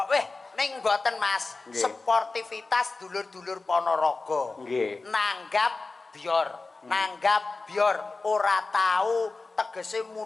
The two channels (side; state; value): right; quieter; 3.7 dB